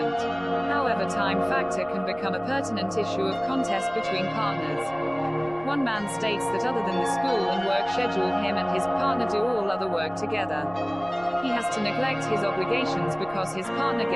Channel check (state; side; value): noise; left; rumble, 24 dB below the sound